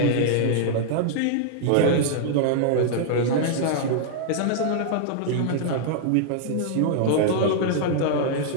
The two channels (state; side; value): different; both; correlation -0.01